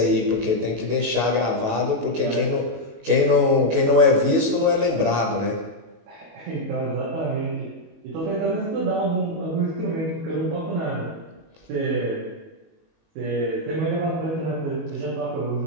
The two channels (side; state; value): left; late; 19 ms